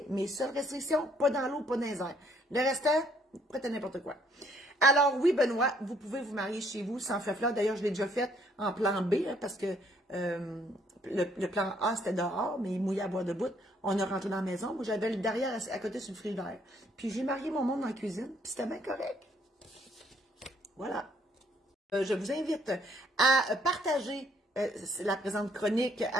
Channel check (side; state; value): both; normal; correlation 0.66